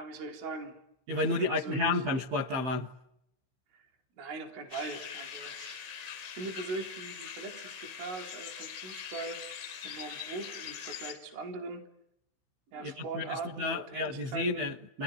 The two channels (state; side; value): late; left; 16 ms